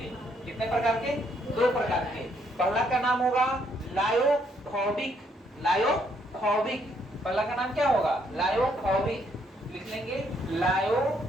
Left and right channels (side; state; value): both; normal; correlation 0.71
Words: कितने प्रकार के? 2 प्रकार के। पहला का नाम होगा लायोफोबिक। लायोफोबिक पहला का नाम क्या होगा? लायोफोबिक। लिख लेंगे